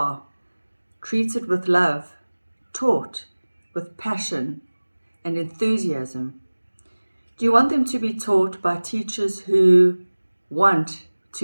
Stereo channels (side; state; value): both; inverted; correlation -1.00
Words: treated with love, taught with passion and enthusiasm? Do you want them to be taught by teachers who want